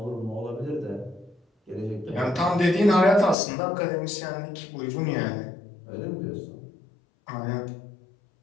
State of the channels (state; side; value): drops out; right; at 3.4 s